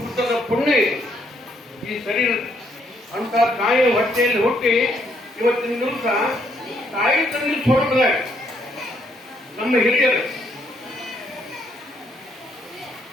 ಪುಣ್ಯ ಈ ಶರೀರ ಅಂತ ತಾಯಿ ಹೊಟ್ಟೆಯಲ್ಲಿ ಹುಟ್ಟಿ ಇವತ್ತಿನ ದಿವಸ ತಾಯಿ ತಂದೆ ಸ್ವರೂಪದ ನಮ್ಮ ಹಿರಿಯರು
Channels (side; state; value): both; normal; correlation 0.71